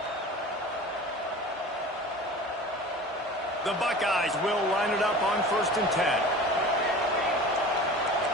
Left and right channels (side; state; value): both; normal; correlation 0.38